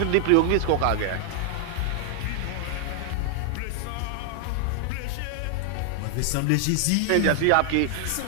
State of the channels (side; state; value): both; different; correlation 0.00